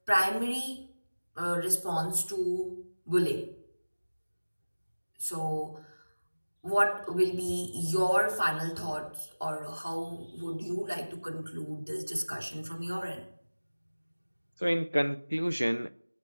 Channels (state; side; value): inverted; both; correlation -1.00